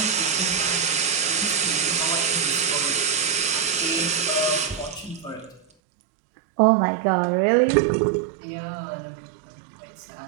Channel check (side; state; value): left; drops out; at 5.7 s